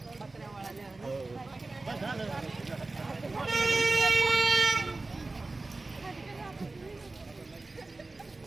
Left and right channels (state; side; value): quieter; left; 3.3 dB